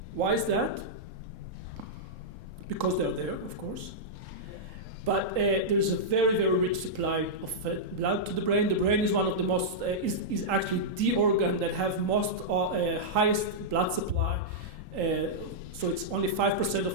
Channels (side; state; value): left; late; 3.8 ms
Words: Why is that? Because they're there, of course. But there's a very, very rich supply of blood to the brain. The brain is one of the most, is actually the organ that have most highest blood supply. So it's only 5%